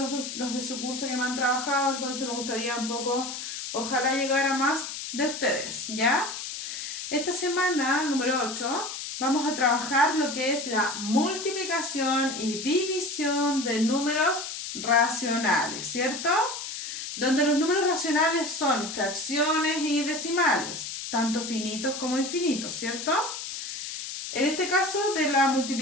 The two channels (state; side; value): noise; left; hiss, 7 dB below the sound